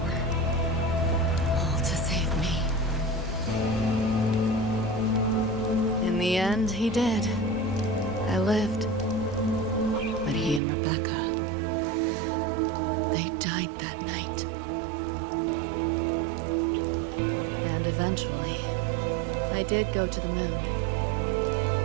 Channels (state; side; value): drops out; left; at 10.6 s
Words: All to save me. In the end, he did. I lived. But he and Rebecca, they died that night. And eventually, I did go to the moon.